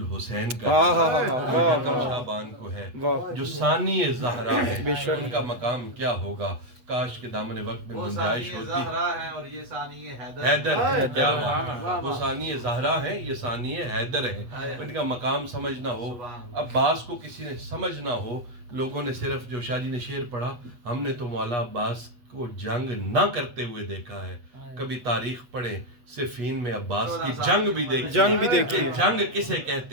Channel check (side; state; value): left; late; 8.3 ms